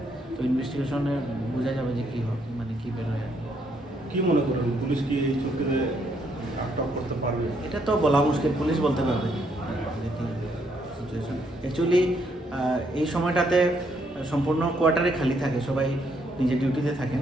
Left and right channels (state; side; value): normal; both; correlation 0.73